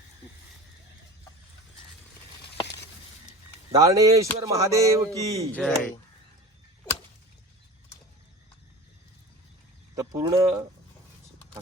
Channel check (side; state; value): both; normal; correlation 0.36